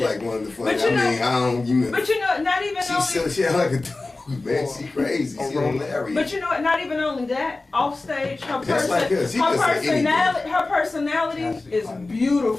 like one of the funny. But you know- I don't. You But you know, not even only. she like a dude, man. She crazy. She hilarious. But you know what? Not even only that. Off stage, her Just like us. She can say personality Chastity is funny.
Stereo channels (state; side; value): quieter; right; 3.3 dB